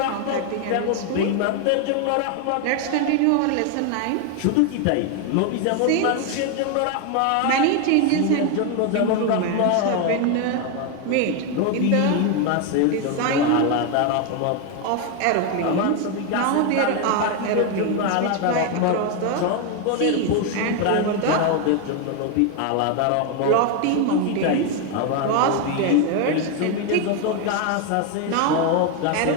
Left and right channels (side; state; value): both; different; correlation 0.01